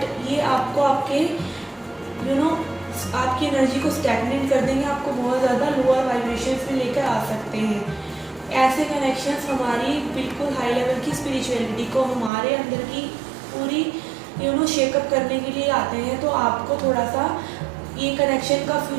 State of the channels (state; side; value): drops out; left; at 12.3 s